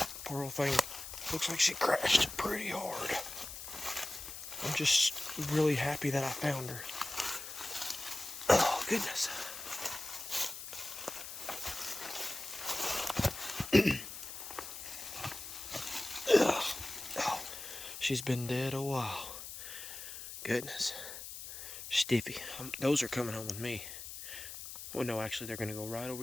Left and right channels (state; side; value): noise; left; hiss, 10 dB below the sound